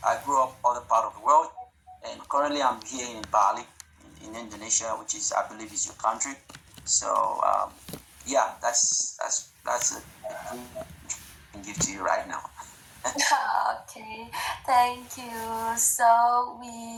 grew up other part of the world, and currently I'm here in Bali, in Indonesia, which is I believe is your country. So yeah, that's a thing I can give to you right now. Okay, thank you. So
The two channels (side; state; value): both; identical; correlation 1.00